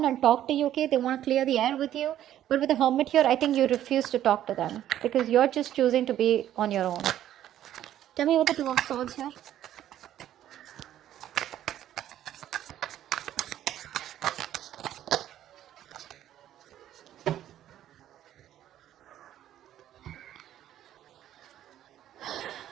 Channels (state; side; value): quieter; left; 11.9 dB